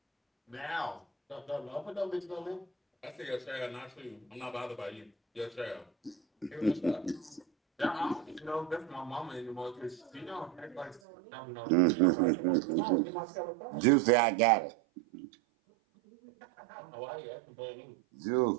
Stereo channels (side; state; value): left; drops out; at 11.0 s